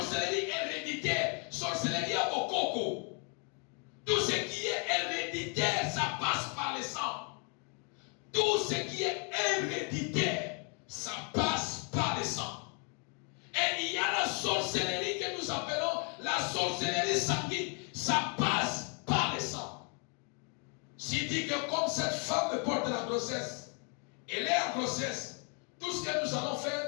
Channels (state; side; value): quieter; right; 37.8 dB